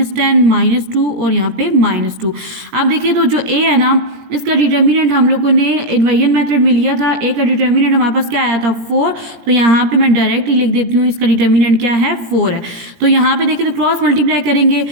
-2 और यहाँ पे -2। अब देखिए तो जो A है ना इसका डिटर्मिनेंट हम लोगों ने इन्वर्जन मेथड में लिया था। A का डिटर्मिनेंट हमारे पास क्या आया था 4। तो यहाँ पे मैं डायरेक्ट ही लिख देती हूँ इसका डिटर्मिनेंट क्या है 4 है। तो यहाँ पे देखिए तो क्रॉस मल्टीप्लाई करेंगे,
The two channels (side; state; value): left; late; 17 ms